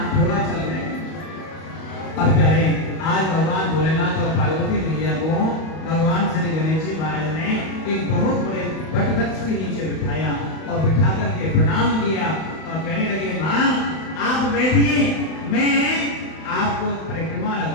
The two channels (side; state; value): right; late; 31 ms